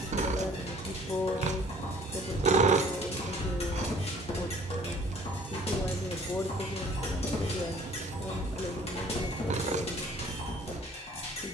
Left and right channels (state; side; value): normal; both; correlation 0.54